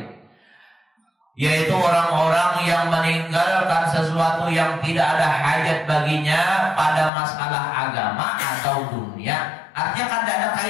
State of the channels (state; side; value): drops out; right; at 7.1 s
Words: yaitu orang-orang yang meninggalkan sesuatu yang tidak ada hajat baginya pada masalah agama atau dunia. Artinya kan tidak ada